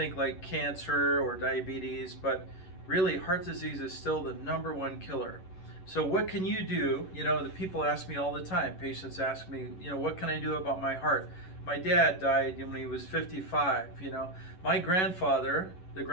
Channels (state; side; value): late; right; 11 ms